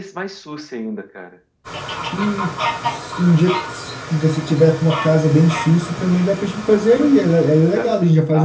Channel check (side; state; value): both; identical; correlation 1.00